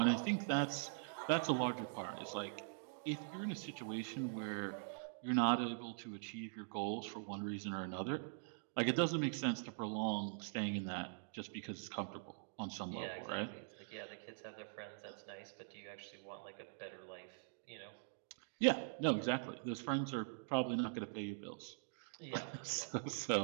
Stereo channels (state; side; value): silent; left; digital silence